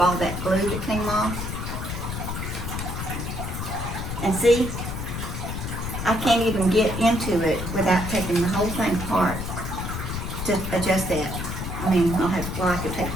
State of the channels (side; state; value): left; noise; rumble, 5 dB below the sound